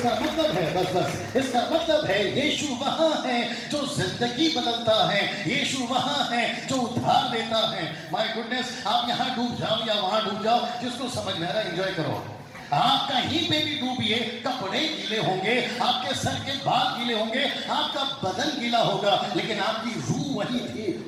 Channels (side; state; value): both; identical; correlation 1.00